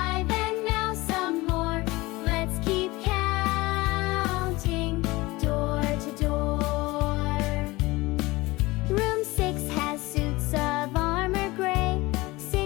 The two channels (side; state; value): right; quieter; 21.2 dB